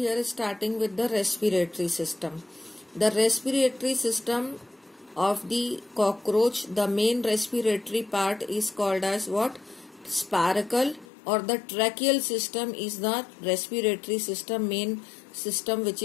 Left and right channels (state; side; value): drops out; right; at 11.1 s